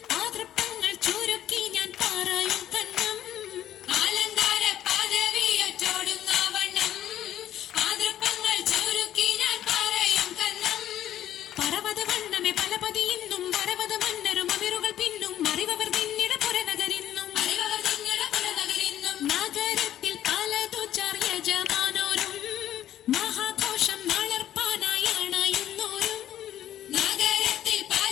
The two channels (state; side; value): quieter; right; 11.8 dB